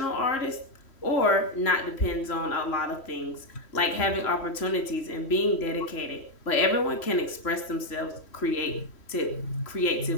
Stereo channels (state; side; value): late; right; 3.1 ms